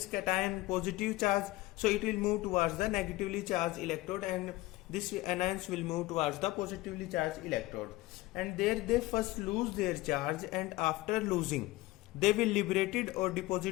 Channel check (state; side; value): quieter; right; 19.2 dB